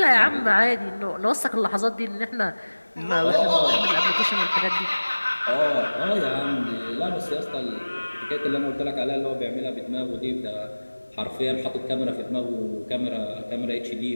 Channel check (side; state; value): both; inverted; correlation -1.00